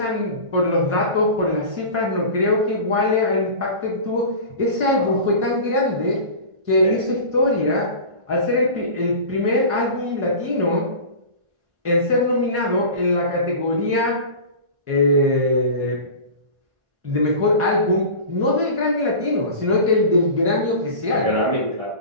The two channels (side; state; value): left; late; 1.5 ms